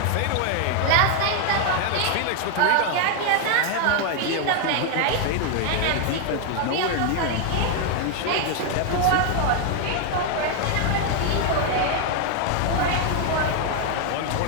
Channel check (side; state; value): both; different; correlation 0.00